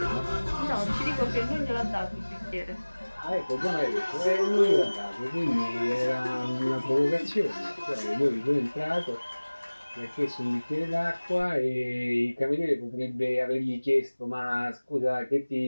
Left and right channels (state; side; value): inverted; both; correlation -1.00